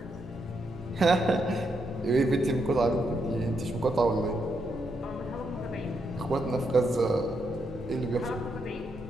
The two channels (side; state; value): both; normal; correlation 0.80